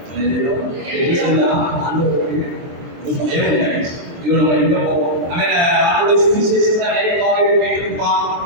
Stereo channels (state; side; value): late; left; 23 ms